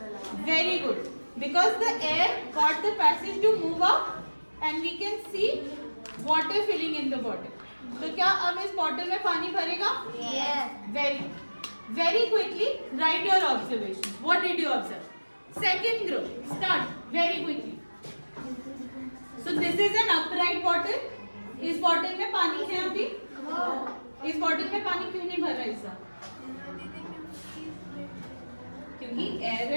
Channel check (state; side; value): inverted; both; correlation -1.00